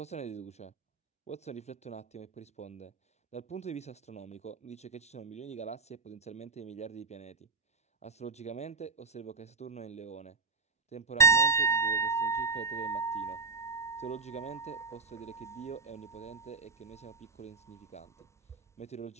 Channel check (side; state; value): left; quieter; 4.1 dB